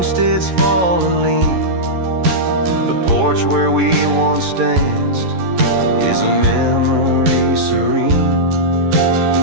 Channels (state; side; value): late; left; 11 ms